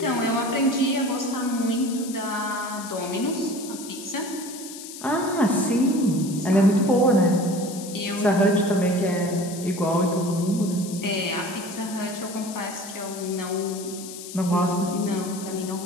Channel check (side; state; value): left; noise; hiss, 12 dB below the sound